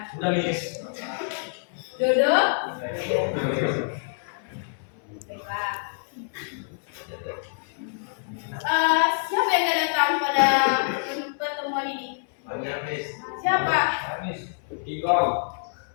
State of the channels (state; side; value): silent; right; digital silence